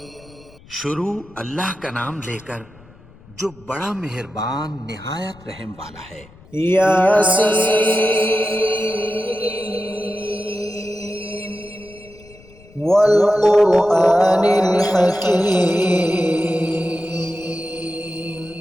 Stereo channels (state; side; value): noise; left; rumble, 24 dB below the sound